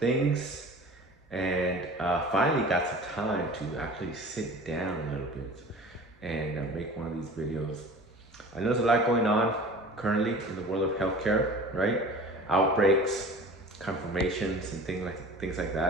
and finally got some time to actually sit down a little bit and make one of these videos. I know there's a lot going on currently in the world of healthcare, right? Outbreaks, confirmations, and things like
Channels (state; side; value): normal; both; correlation 0.41